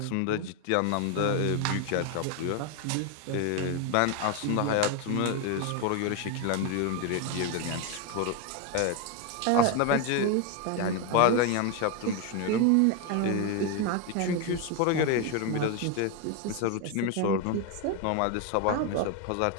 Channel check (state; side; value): different; both; correlation 0.01